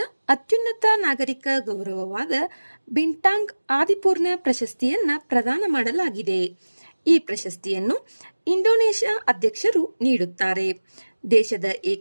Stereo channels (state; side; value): inverted; both; correlation -1.00